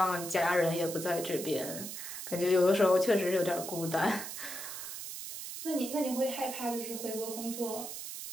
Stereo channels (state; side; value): noise; right; hiss, 8 dB below the sound